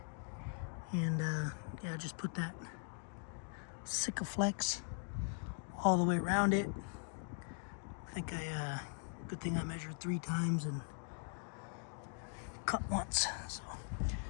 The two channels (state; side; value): silent; right; 51 dB below the other